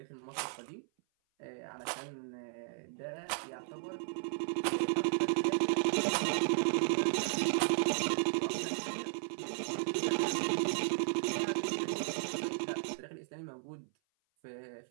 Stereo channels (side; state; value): left; silent; 54 dB below the other